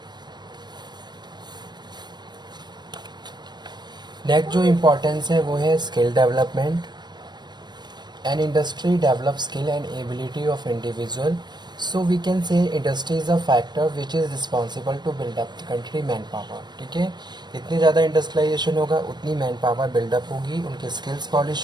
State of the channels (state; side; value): late; left; 0.21 ms